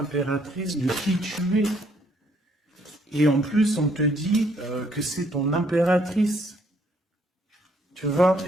de qui tu es. Et en plus, on te dit que c'est ton impératrice. Tu vois?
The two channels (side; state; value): both; normal; correlation 0.68